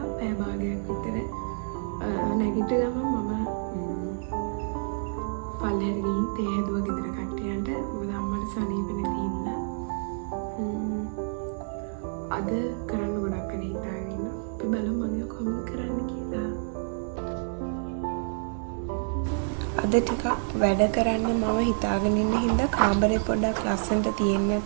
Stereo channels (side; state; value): left; silent; digital silence